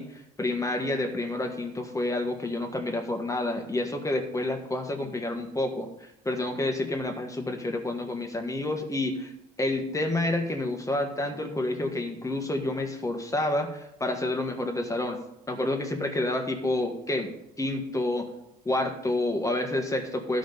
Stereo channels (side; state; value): both; normal; correlation 0.68